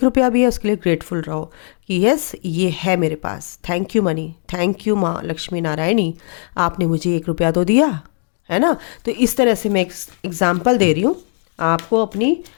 रुपया भी है, उसके लिए ग्रेटफुल रहो कि यस ये है मेरे पास। Thank you money, thank you माँ लक्ष्मी नारायणी, आपने मुझे 1 रुपया तो दिया है ना। तो इस तरह से मैं एक एग्जाम्पल दे रही हूँ आपको। अपनी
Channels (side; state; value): right; silent; 64 dB below the other